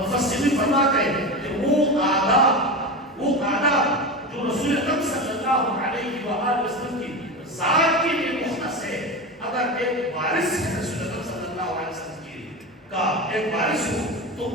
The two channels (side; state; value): both; normal; correlation 0.23